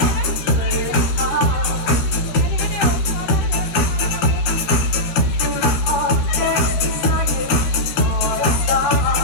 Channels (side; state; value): right; late; 13 ms